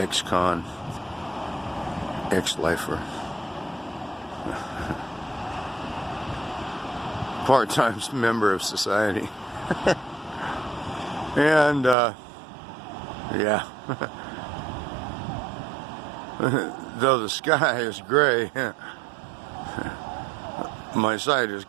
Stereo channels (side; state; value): left; drops out; at 12.0 s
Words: ex-lifer, part-time member of society, and yeah, though the sky is gray, my sight is